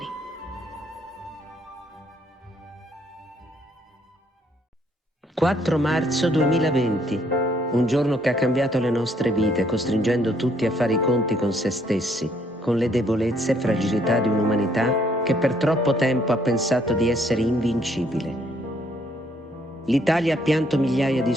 «4 marzo 2020, un giorno che ha cambiato le nostre vite, costringendo tutti a fare i conti con se stessi, con le debolezze e fragilità di un'umanità che per troppo tempo ha pensato di essere invincibile. L'Italia ha pianto migliaia di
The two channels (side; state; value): both; normal; correlation 0.68